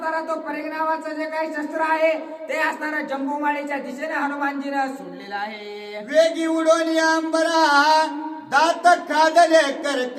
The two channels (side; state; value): both; identical; correlation 1.00